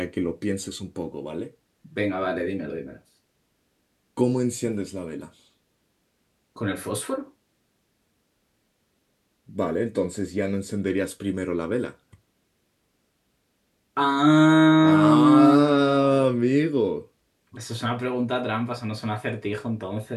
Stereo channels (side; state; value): both; identical; correlation 1.00